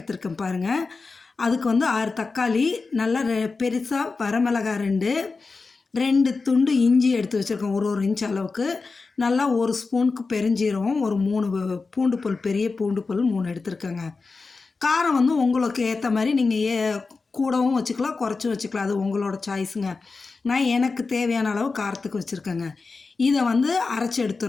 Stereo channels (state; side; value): quieter; right; 4.2 dB